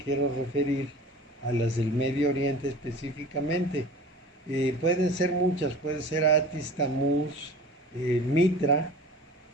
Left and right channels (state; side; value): normal; both; correlation 0.40